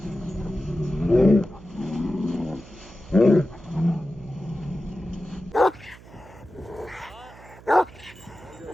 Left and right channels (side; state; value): right; noise; hum, 20 dB below the sound